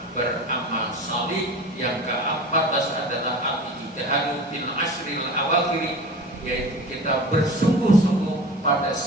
salih. Yang ke-14 adalah al-ijtihadu fil ashril awakhir, yaitu kita bersungguh-sungguh pada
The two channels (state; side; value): normal; both; correlation 0.35